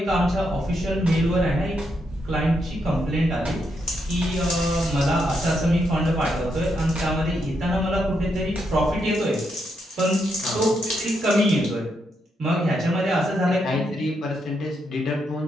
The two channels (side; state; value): both; normal; correlation 0.80